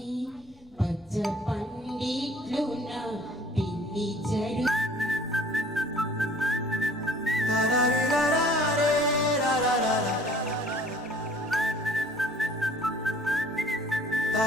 పచ్చ పండిట్లు నా పిల్లి జడు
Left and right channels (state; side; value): noise; left; rumble, 28 dB below the sound